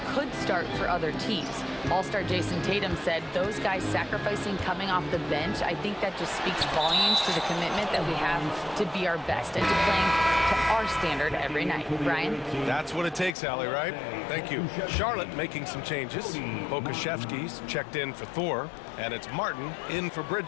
could start for other teams. All-star Jason Tatum said those guys sacrificing coming off the bench, I think that just speaks volumes to the commitment that we have to be our best and to playing to our standard every night. Brian? That's what it takes, Allie, right? Thank you. Charlotte making some changes. Bokashevsky's checked in for Thor, and it's Martin in for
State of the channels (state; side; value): drops out; right; at 13.4 s